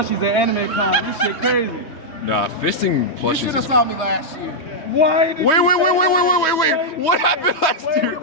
at Anime Con. This shit crazy. Nah, fisting You plushies. should have Is... saw me last year. Why? Did Wait, you wait, say wait, wait, that? wait, wait, wait, wait. What happened last Wait a year?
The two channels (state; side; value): late; right; 3.2 ms